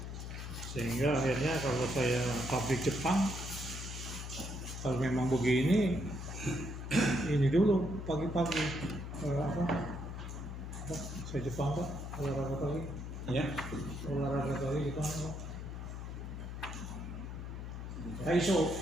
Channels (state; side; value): noise; left; hum, 7 dB below the sound